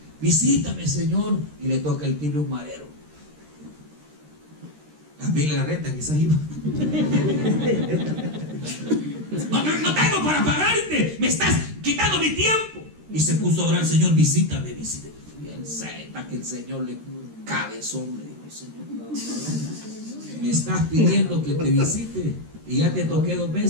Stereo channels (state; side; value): late; left; 13 ms